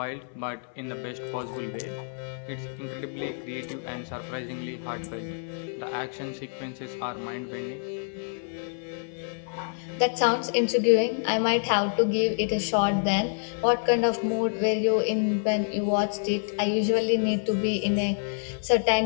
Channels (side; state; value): right; silent; 60 dB below the other